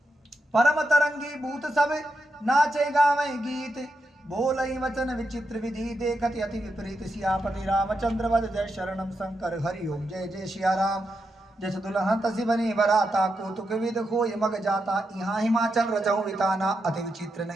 परम तरंगी भूत सब नाचे गावे गीत। बोलई वचन विचित्र विधि देखत अति विपरीत। सियापति रामचंद्र वद जय शरणम शंकर हरि ओम। जय जय सिया राम। जस दुल्हन तसी बनी बराता। कौतुक विद होय मग जाता। यहाँ हिमाचल रजऊ विताना अति विचित्र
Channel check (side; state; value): both; normal; correlation 0.85